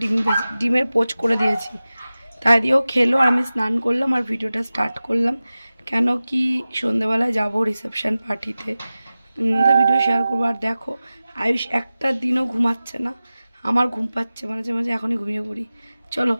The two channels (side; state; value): both; inverted; correlation -0.96